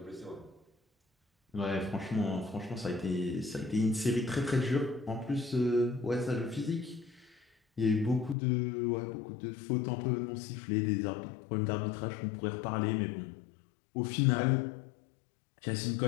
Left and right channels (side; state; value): right; drops out; at 8.3 s